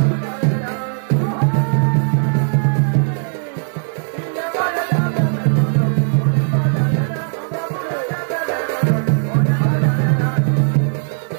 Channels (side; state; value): left; silent; digital silence